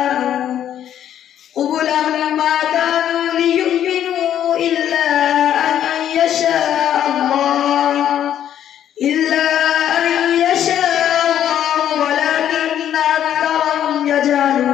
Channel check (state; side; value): quieter; right; 10.4 dB